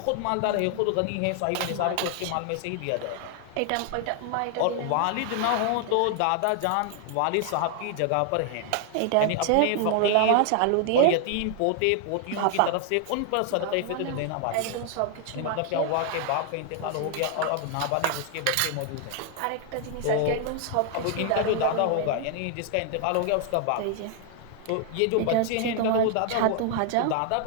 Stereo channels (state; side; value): different; both; correlation 0.00